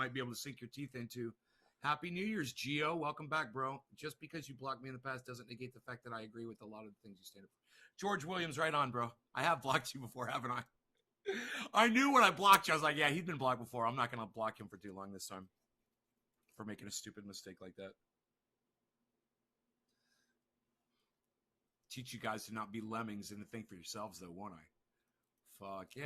be able to sink your teeth into. Happy New Year's, Gio. Welcome back, bro. Just because you blocked me in the past doesn't negate the fact that I agree with a lot of the things you stand up for. George Williams, right on, bro. I have blocked you before, haven't I? I knew when I blocked you, I was like, yeah, he's been blocked before. I'm not going to block him for too long this time for making a stupid mistake like that. Teach you guys to not be lemmings and to think for yourselves, though, won't I? Fuck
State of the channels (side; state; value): both; identical; correlation 1.00